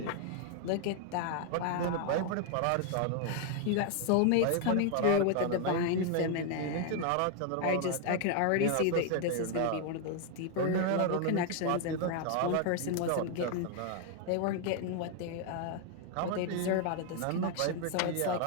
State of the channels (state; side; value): different; both; correlation 0.00